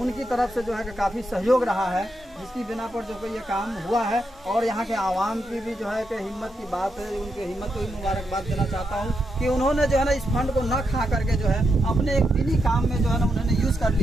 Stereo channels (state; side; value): normal; both; correlation 0.83